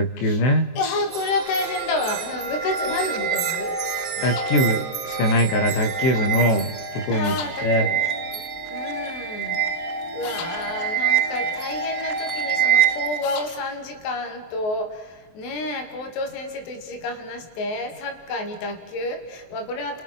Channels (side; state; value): right; late; 23 ms